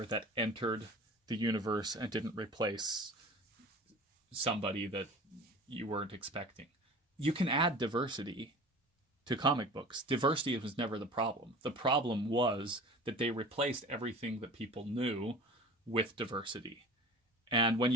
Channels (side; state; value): both; normal; correlation 0.39